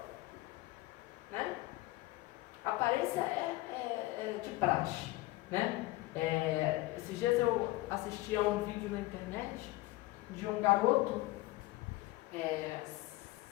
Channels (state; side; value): quieter; right; 18.9 dB